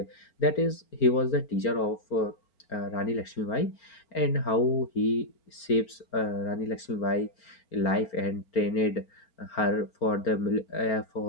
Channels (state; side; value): late; right; 4.4 ms